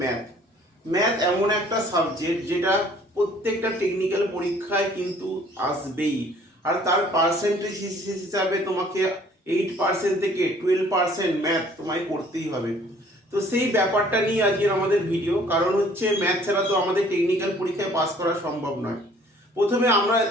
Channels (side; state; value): both; normal; correlation 0.56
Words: ম্যাথ। ম্যাথ এমন একটা সাবজেক্ট যেটা প্রত্যেকটা টেকনিক্যাল পরীক্ষায় কিন্তু আসবেই, আর তার পার্সেন্টেজ হিসাবে তোমাকে 8% থেকে 12% ম্যাথ তোমায় করতেই হবে। তো সেই ব্যাপারটা নিয়ে আজকের আমাদের ভিডিও, কারণ হচ্ছে ম্যাথ ছাড়া তো আমাদের টেকনিক্যাল পরীক্ষায় পাস করা সম্ভব নয়। প্রথমে আমরা